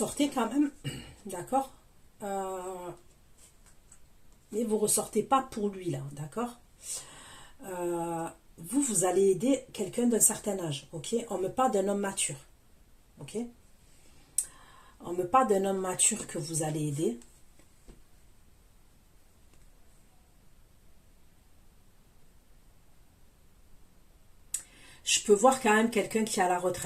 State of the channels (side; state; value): both; identical; correlation 1.00